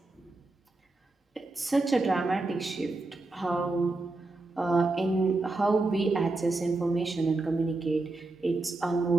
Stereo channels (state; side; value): quieter; left; 3.2 dB